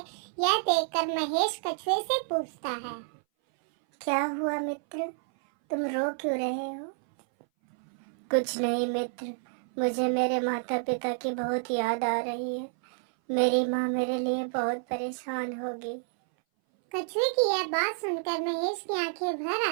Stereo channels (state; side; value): silent; left; 58 dB below the other